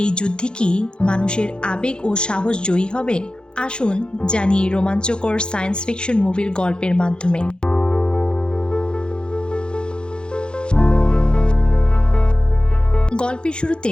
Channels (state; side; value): late; right; 0.050 ms